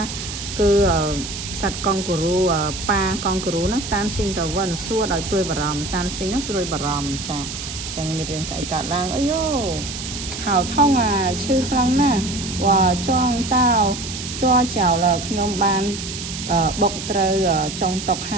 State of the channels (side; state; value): right; noise; hiss, 8 dB below the sound